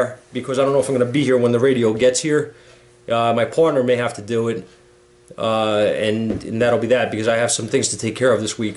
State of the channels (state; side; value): identical; both; correlation 1.00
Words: because I don't know if I'm going to be here when the radio gets here. My partner may have to do it, and that'll be that, because I have some things to take care of this